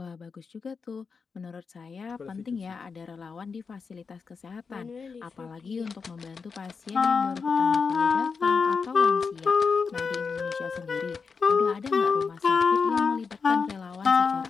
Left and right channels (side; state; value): right; quieter; 5.3 dB